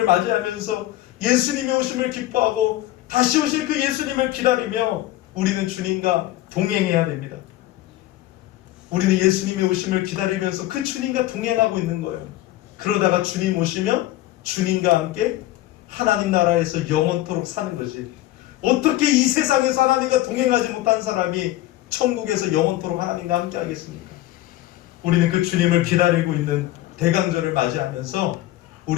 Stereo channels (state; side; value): quieter; right; 15.6 dB